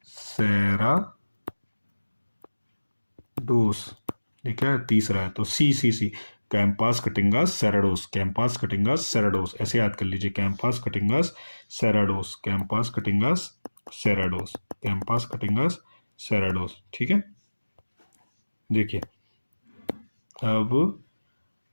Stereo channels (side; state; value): both; inverted; correlation -1.00